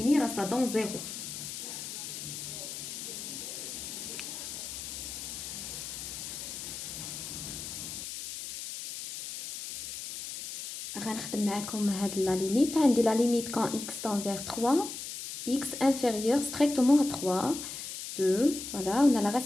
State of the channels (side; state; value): left; noise; hiss, 8 dB below the sound